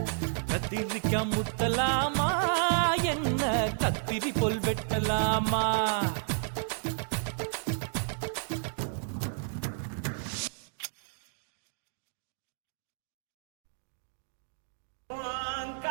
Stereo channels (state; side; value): silent; left; digital silence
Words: கத்திரிக்க முத்தலாமா என்ன கத்திரி போல் வெட்டலாமா